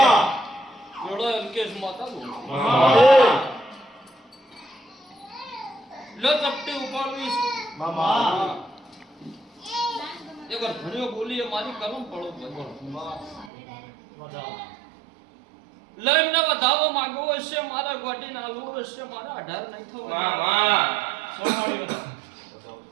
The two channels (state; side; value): drops out; left; at 13.5 s